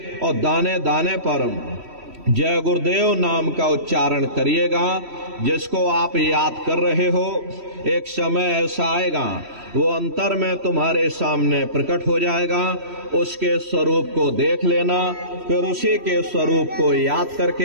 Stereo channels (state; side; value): late; left; 3.1 ms